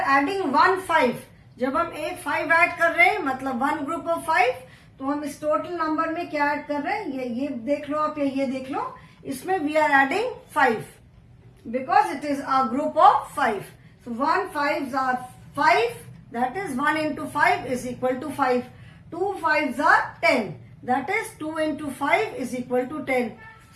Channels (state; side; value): identical; both; correlation 1.00